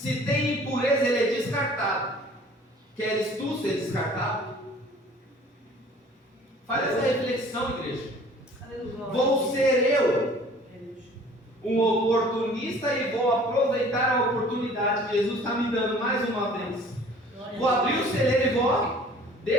tem impureza, ele é descartado. Queres tu ser descartado? Faz essa reflexão, igreja. Aleluia. Vou ser eu um oportunista e vou aproveitar a oportunidade que Jesus está me dando mais uma vez. Vou abrir o celeiro e vou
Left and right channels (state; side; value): normal; both; correlation 0.50